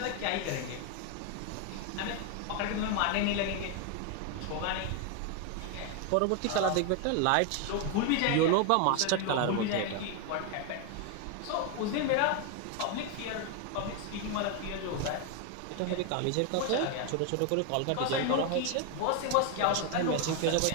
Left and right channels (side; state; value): both; different; correlation 0.01